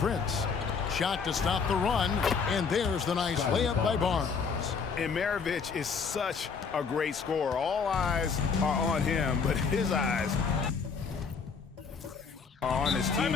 Shot to stop the run. And there's the nice layup by Barnes. And Maravich is such a great scorer. All eyes are on him, but his eyes are on his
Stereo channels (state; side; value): quieter; right; 5.6 dB